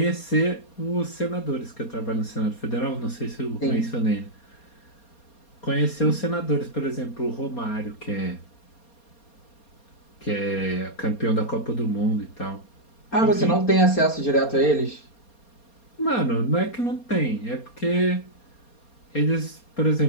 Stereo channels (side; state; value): right; late; 4.3 ms